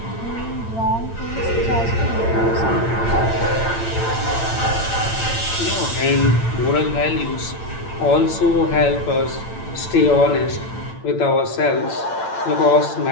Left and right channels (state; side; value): late; right; 8.9 ms